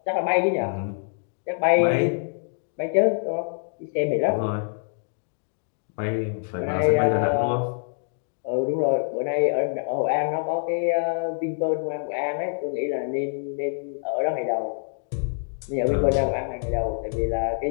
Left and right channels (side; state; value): right; silent; digital silence